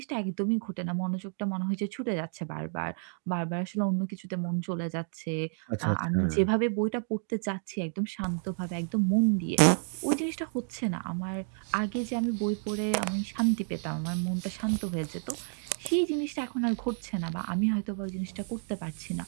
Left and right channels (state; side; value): silent; left; 55 dB below the other